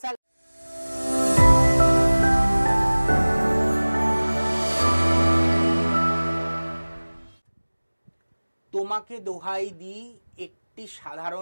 স্যার তোমাকে দোহাই দিই, একটি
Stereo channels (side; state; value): both; inverted; correlation -1.00